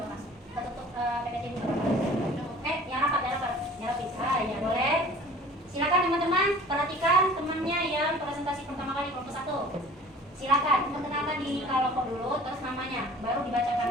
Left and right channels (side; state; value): both; normal; correlation 0.47